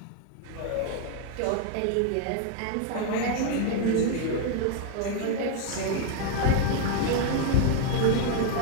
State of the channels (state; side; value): different; both; correlation 0.01